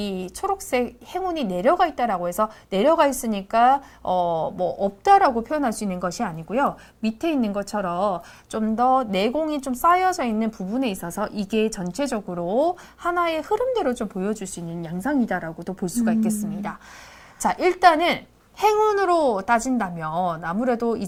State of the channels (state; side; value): identical; both; correlation 1.00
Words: 초록색 행운이 내려가 있다라고 해서 내려가 있으니까 뭐 없다라고 표현할 수 있는 것이 아니고요. 밑에 있는 것처럼 좀 더 내공이 좀 쌓여져 있는 부분에 있어서 이게 전체적으로 하나의 흐름대로 좀 보여줄 수 있는 양상이다라고도 볼 수가 있겠습니다. 자, 일단은 행운으로 따진다면 아무래도